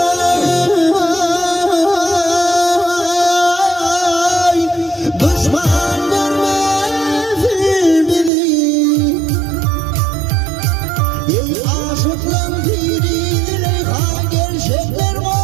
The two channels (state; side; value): drops out; left; at 8.3 s